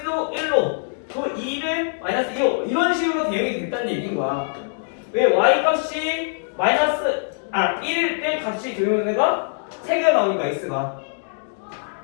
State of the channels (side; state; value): right; silent; digital silence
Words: 1로 그 2는 마이너스 2로 이런 식으로 대응이 됐다는 얘기인 거야. 왜 y 값이 마이너스 1일 때 값이 되는 애가 3개가 나오니까 x가